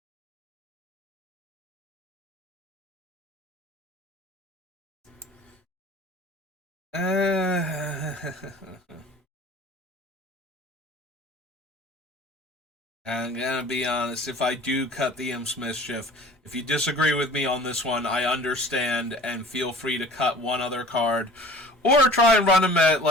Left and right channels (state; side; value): normal; both; correlation 0.45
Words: I'm gonna be honest, if I do cut the Imp's Mischief, if you disagree with me on this one, I understand, and feel free to cut one other card. Or try and run him at,